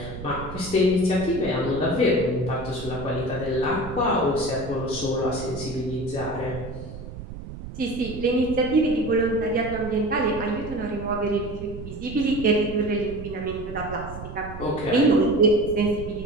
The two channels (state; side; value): noise; right; rumble, 11 dB below the sound